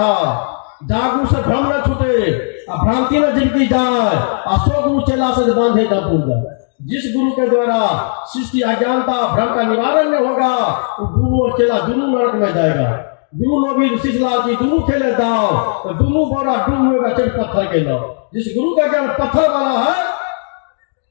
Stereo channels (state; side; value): silent; right; 68 dB below the other